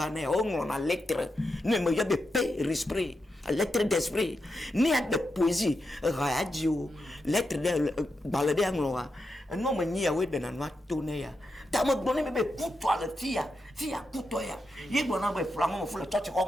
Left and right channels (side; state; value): both; normal; correlation 0.87